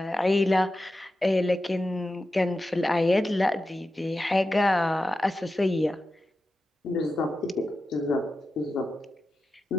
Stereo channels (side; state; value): both; normal; correlation 0.92